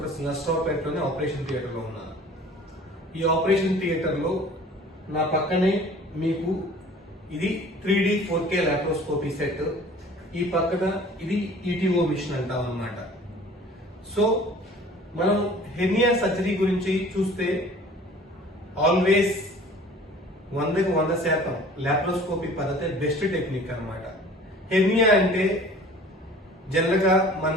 నర్సరావుపేటలోనే ఆపరేషన్ థియేటర్లో ఉన్నాను. ఈ ఆపరేషన్ థియేటర్లో నా పక్కనే మీకు ఇది 3D 4K లాప్రోస్కోపీ సెట్, ఈ పక్కన ఇది ఈటీఓ మిషన్ అంటాం అన్నమాట. సో మనం హెర్నియా సర్జరీ గురించి చూస్తే ఆల్వేస్ 100% లాప్రోస్కోపీ పద్ధతి బెస్ట్ టెక్నిక్ అన్నమాట. హెర్నియా అంటే జనరల్ గా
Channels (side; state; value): both; normal; correlation 0.47